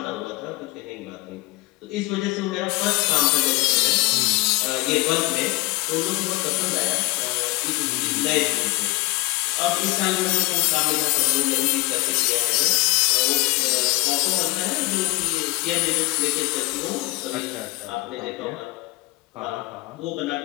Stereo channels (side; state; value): right; quieter; 22.8 dB